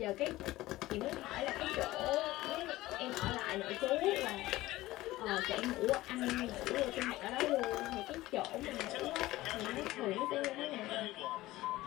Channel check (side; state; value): right; quieter; 17.4 dB